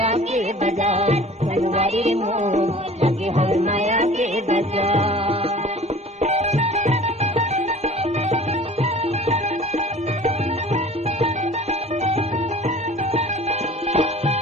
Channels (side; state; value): both; normal; correlation 0.45